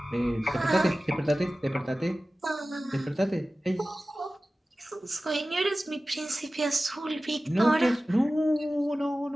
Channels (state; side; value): normal; both; correlation 0.96